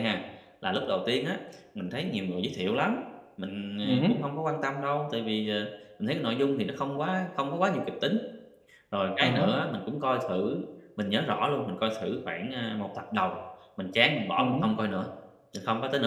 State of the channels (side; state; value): both; identical; correlation 1.00